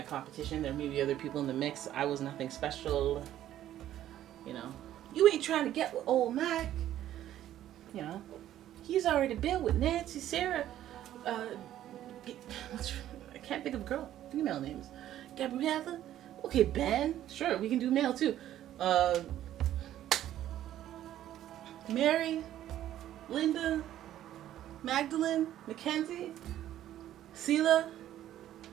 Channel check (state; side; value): quieter; left; 12.3 dB